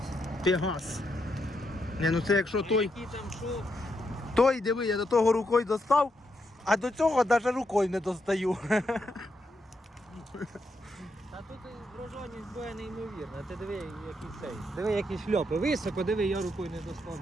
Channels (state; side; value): normal; both; correlation 0.80